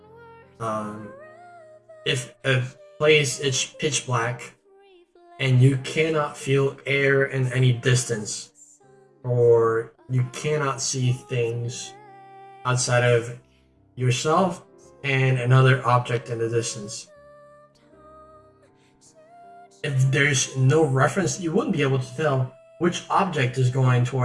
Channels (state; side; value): identical; both; correlation 1.00